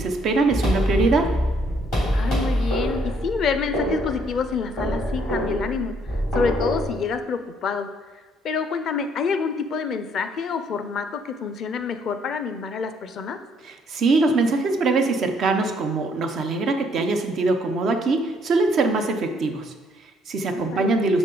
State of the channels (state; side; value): normal; both; correlation 0.67